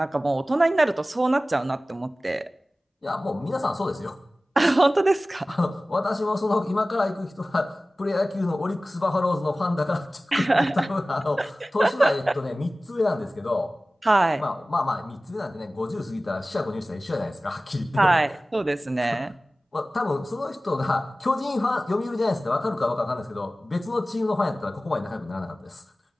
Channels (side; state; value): both; normal; correlation 0.97